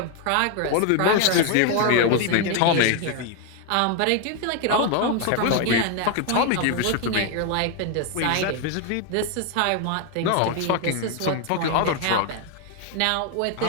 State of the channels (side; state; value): both; different; correlation 0.00